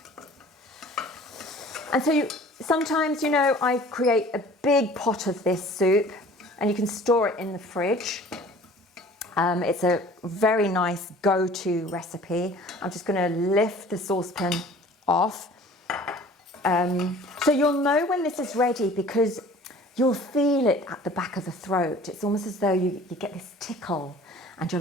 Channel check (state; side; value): normal; both; correlation 0.48